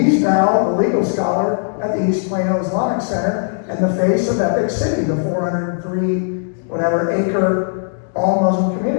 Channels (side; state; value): right; silent; digital silence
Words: now the legal scholar at the East Plano Islamic Center and the face of Epic City, the 403 acre all Muslim